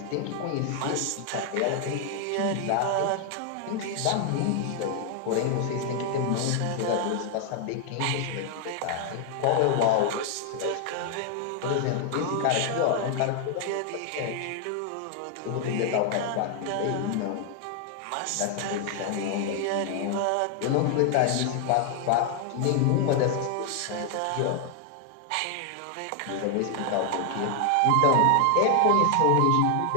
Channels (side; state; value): both; different; correlation 0.00